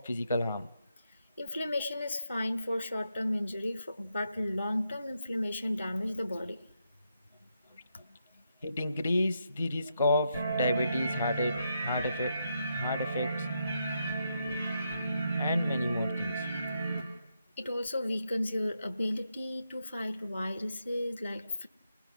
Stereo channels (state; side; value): inverted; both; correlation -0.81